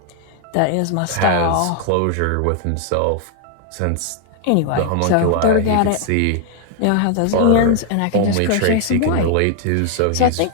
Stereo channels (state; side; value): different; both; correlation 0.00